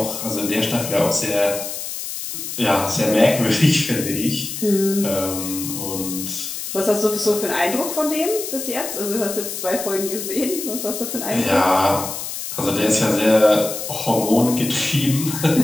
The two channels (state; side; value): noise; left; hiss, 6 dB below the sound